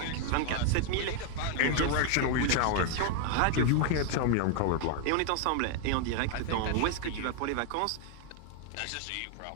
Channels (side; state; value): both; different; correlation 0.00